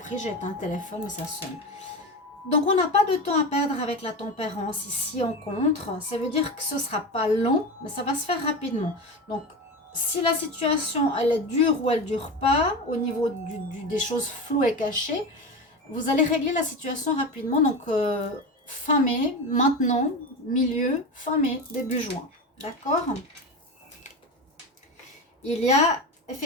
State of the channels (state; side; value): normal; both; correlation 0.23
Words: j'ai éteint un téléphone, mais ça sonne. Donc, on n'a pas de temps à perdre avec la tempérance ici en contre. Ça veut dire que ce ne sera pas long, mais ça va se faire rapidement. Donc, si la situation, elle est dure ou elle ne dure pas, au niveau des choses floues et cachées, vous allez régler la situation rapidement. Donc, fin mai, maintenant, milieu, fin mai, début juin. D'accord? Il y a